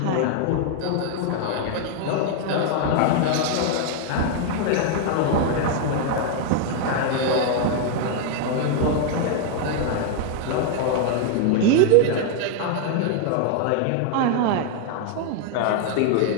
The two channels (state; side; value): different; both; correlation 0.00